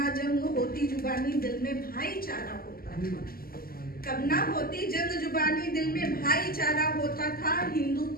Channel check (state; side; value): late; right; 0.43 ms